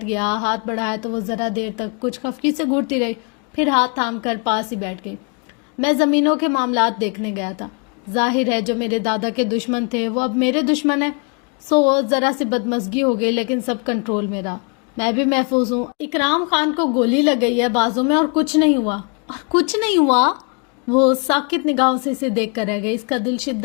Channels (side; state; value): right; quieter; 35.9 dB